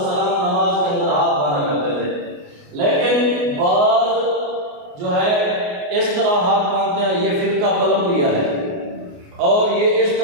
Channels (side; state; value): left; late; 28 ms